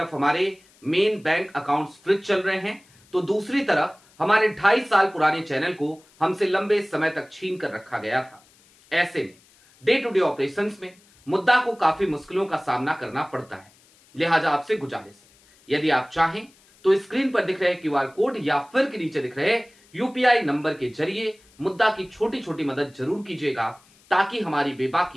हमारे मेन बैंक अकाउंट्स फ्रीज चल रहे हैं, तो दूसरी तरफ हमारे 2.5 साल पुराने चैनल को हमसे लंबे समय तक छीन कर रखा गया था। ऐसे में डे टू डे ऑपरेशंस में मुद्दा को काफी मुश्किलों का सामना करना पड़ता है। लिहाजा आपसे गुजारिश है, यदि आप चाहें तो स्क्रीन पर दिख रहे क्यूआर कोड या फिर के नीचे दिख रहे यूपीआई नंबर के जरिए मुद्दा की छोटी छोटी मदद जरूर कीजिएगा, ताकि हमारी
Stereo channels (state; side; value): noise; left; hiss, 30 dB below the sound